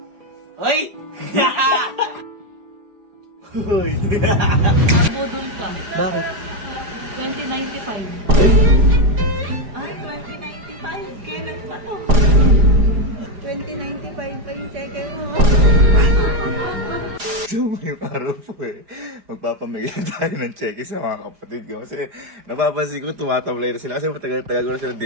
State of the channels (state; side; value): late; left; 4.9 ms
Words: Hoy! Hoy! Nabudol ka. Bakit? 2095. Ay, 2095. Kailan pa to? 2095 pa yung cheque mo. So, ngayong araw po magpapamigay tayo ng cheque sa mga kapatid ko. Kasi napapansin ko tumatamlay na sila. Kasi matagal-tagal ko na sila